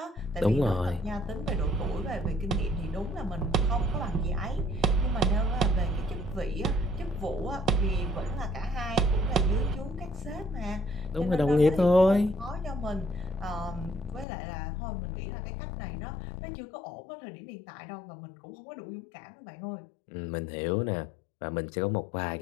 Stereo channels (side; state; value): right; drops out; at 14.2 s